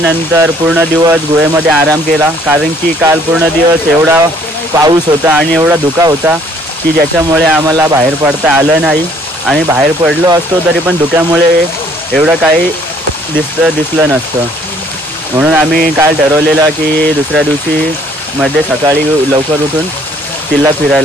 पूर्ण दिवस गुहेमध्ये आराम केला. कारण की काल पूर्ण दिवस एवढा पाऊस होता आणि एवढा धुका होता की ज्याच्यामुळे आम्हाला बाहेर पडता आलं नाही. आणि बाहेर पडलो असतो तरी पण धुक्यामुळे एवढं काही दिसलं नसतं. म्हणून आम्ही काल ठरवलेलं की दुसऱ्या दिवशी मध्ये सकाळी लवकर उठून किल्ला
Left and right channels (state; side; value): normal; both; correlation 0.61